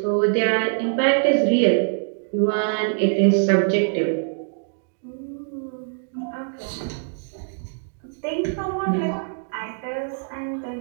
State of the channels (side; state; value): left; silent; digital silence